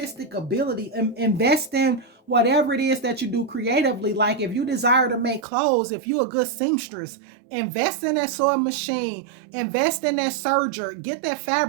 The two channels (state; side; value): drops out; left; at 5.5 s